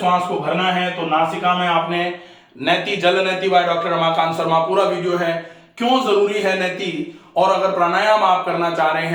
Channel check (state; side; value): identical; both; correlation 1.00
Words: को भरना है, तो नासिका में आपने नैति, जल नैति बाय डॉक्टर रमाकांत शर्मा, पूरा वीडियो है, क्यों जरूरी है नैति, और अगर प्राणायाम आप करना चाह रहे